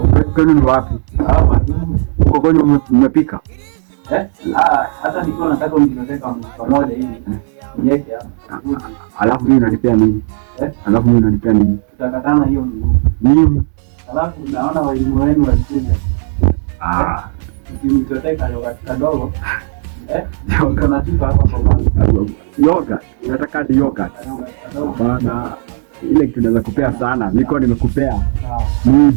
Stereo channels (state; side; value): silent; left; digital silence